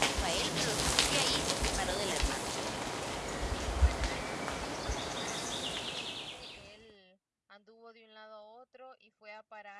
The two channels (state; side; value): identical; both; correlation 1.00